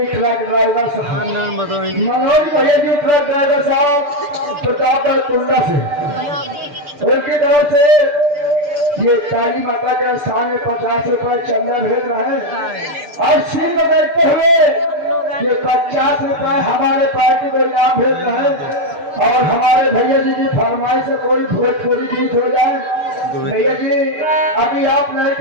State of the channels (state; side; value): late; left; 6.8 ms